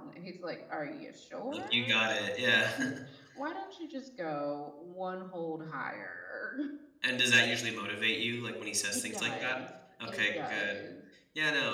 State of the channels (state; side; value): identical; both; correlation 1.00